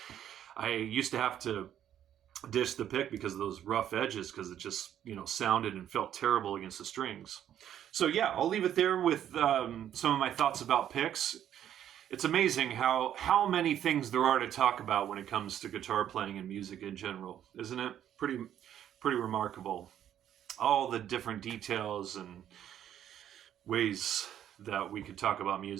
I used to have to dish the pick because of those rough edges, because it just sounded and felt terrible against the strings. So yeah, I'll leave it there with some of my thoughts about picks. It's amazing how many things there are to talk about when it comes to guitar playing and music in general, isn't it? Pretty remarkable. All the different details and ways that we could talk about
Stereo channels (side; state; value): left; quieter; 10.5 dB